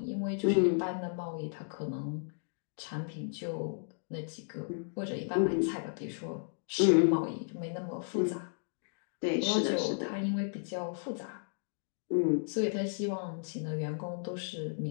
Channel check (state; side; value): silent; right; digital silence